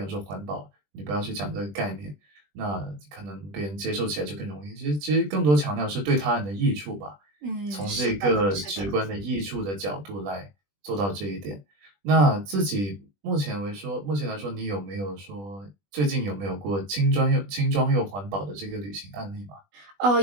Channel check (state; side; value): late; left; 20 ms